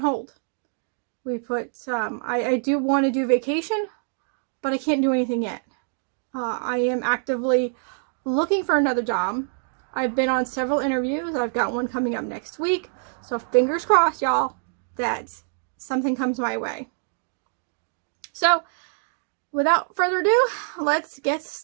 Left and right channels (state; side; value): silent; left; digital silence